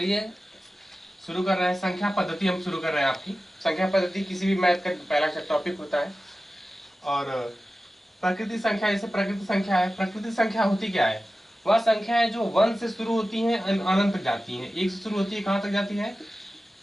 शुरू कर रहे हैं। संख्या पद्धति हम शुरू कर रहे हैं। आपकी संख्या पद्धति किसी भी मैथ का पहला टॉपिक होता है। और प्रकृति संख्या, जैसे प्रकृति संख्या है, प्रकृति संख्या होती क्या है? वह संख्या है जो 1 से शुरू होती है अनंत तक जाती है। 1 से शुरू होती है, कहाँ तक जाती है?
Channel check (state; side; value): normal; both; correlation 0.95